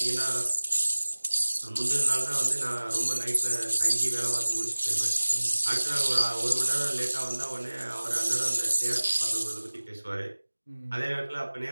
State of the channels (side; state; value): both; inverted; correlation -1.00